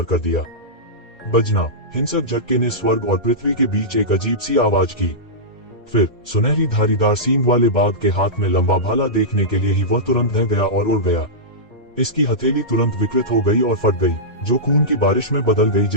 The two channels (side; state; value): both; normal; correlation -0.14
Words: कर दिया। बजना, हिंसक झटके ने स्वर्ग और पृथ्वी के बीच एक अजीब सी आवाज की। फिर सुनहरी धारीदार सींग वाले बाघ के हाथ में लंबा भाला देखने के लिए ही वह तुरंत ढह गया और उड़ गया। इसकी हथेली तुरंत विकृत हो गई और फट गई, जो खून की बारिश में बदल गई